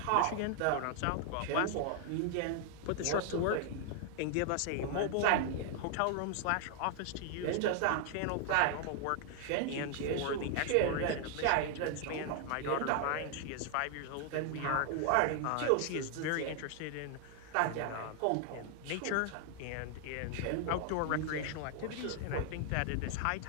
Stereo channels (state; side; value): different; both; correlation 0.00